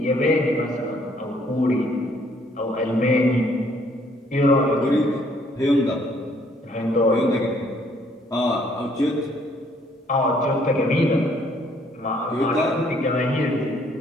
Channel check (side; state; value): both; normal; correlation 0.64